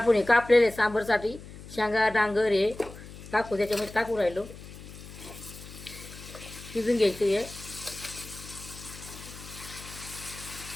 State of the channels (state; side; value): noise; left; hum, 15 dB below the sound